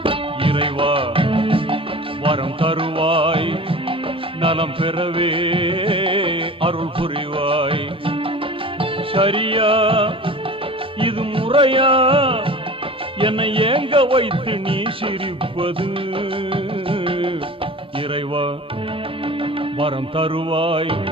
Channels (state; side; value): normal; both; correlation 0.39